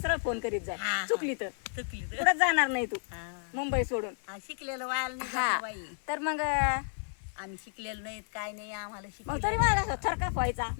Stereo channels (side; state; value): right; silent; 57 dB below the other